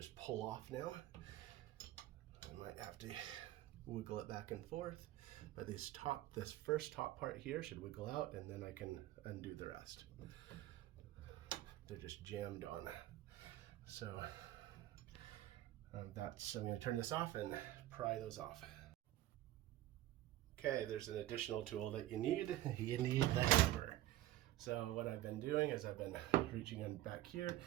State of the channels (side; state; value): left; quieter; 14.7 dB